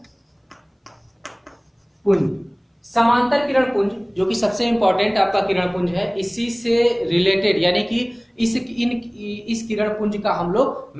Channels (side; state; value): both; identical; correlation 1.00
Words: पुंज जो कि सबसे इंपॉर्टेंट आपका किरण पुंज है, इसी से रिलेटेड यानी कि इस किरण पुंज का हम लोग